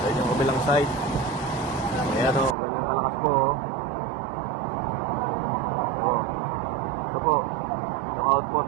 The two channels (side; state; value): left; drops out; at 2.6 s